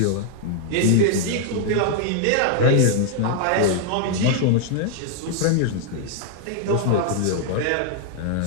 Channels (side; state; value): both; different; correlation 0.00